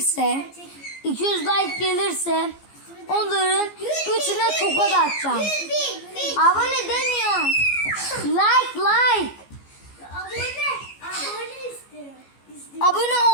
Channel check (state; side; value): late; right; 14 ms